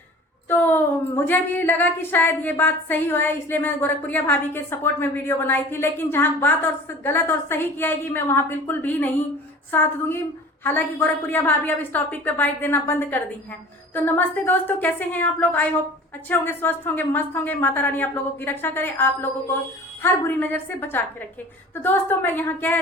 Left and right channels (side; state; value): both; normal; correlation 0.42